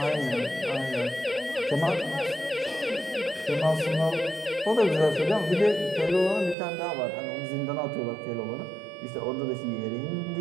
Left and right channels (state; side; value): drops out; left; at 6.6 s